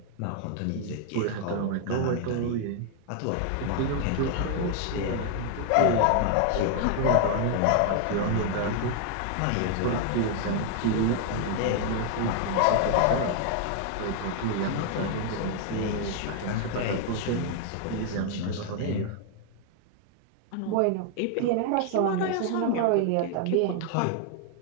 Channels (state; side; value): different; both; correlation 0.00